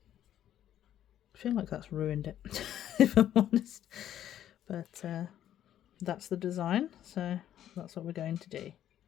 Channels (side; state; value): right; quieter; 11.2 dB